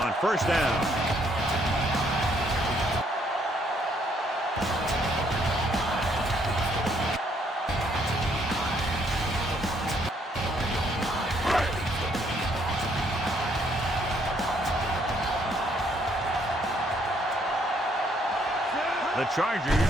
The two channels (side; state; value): both; normal; correlation 0.69